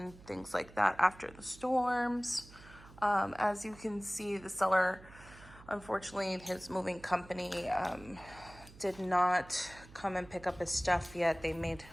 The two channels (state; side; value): noise; right; hum, 20 dB below the sound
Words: things like that after the storms. As you can see, the seller, unfortunately, his moving company did not come and pick up his stuff yet. They made